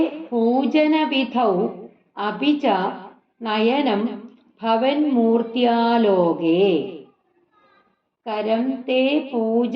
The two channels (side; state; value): both; identical; correlation 1.00